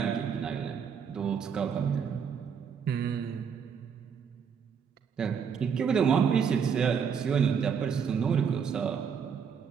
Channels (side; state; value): left; quieter; 6.9 dB